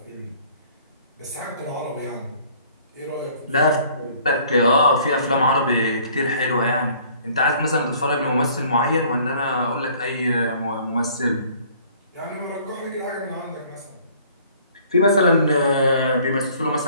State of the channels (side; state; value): both; inverted; correlation -0.56